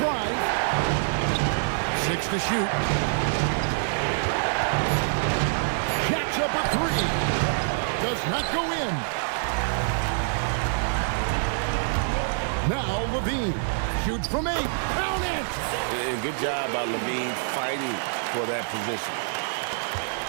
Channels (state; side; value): silent; left; 61 dB below the other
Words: 6 to shoot. Jacks up a 3. Does not go in. Now Levine shoots from 8. Count it! Good job by Levine fighting for that position.